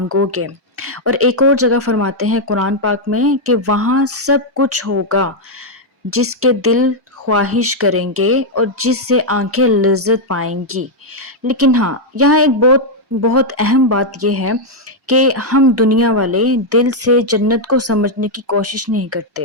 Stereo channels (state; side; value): normal; both; correlation -0.02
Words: گے۔ اور ایک اور جگہ فرماتے ہیں قرآن پاک میں کہ وہاں سب کچھ ہوگا جس کے دل خواہش کریں گے اور جس سے آنکھیں لذت پائیں گی۔ لیکن ہاں، یہاں ایک بہت اہم بات یہ ہے کہ ہم دنیا والے دل سے جنت کو سمجھنے کی کوشش نہیں